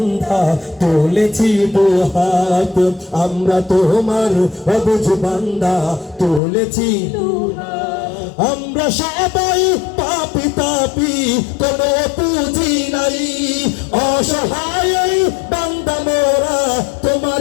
তুলেছি দুহাত, আমরা তোমার অবুঝ বান্ধা তুলেছি দুহাত। আমরা সবাই পাপী তাপী, কোনো পুঁজি নাই, অসহায় বান্দা মোরা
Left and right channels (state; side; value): drops out; right; at 6.4 s